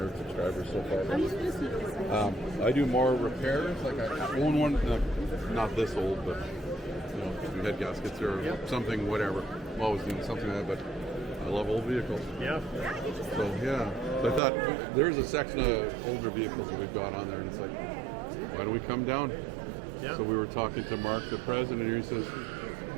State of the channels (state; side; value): drops out; left; at 14.4 s